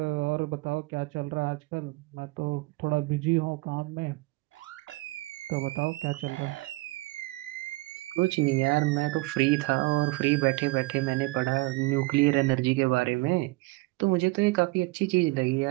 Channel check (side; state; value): left; quieter; 22.6 dB